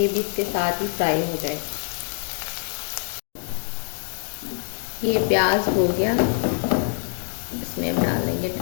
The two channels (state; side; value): silent; right; digital silence